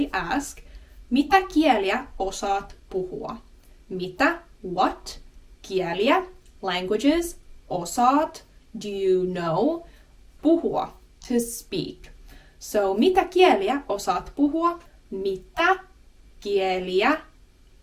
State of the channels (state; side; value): identical; both; correlation 1.00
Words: ask, mitä kieliä osaat puhua? Mitä, what, kieliä, languages, osaat, do you know, puhua, to speak. So mitä kieliä osaat puhua? Mitä kieliä